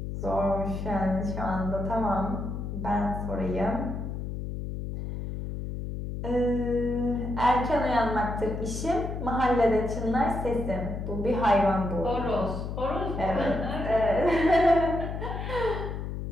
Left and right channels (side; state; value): left; noise; hum, 5 dB below the sound